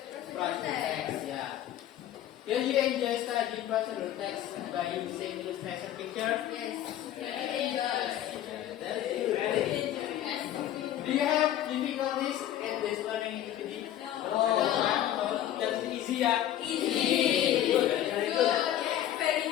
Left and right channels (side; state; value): right; quieter; 12.0 dB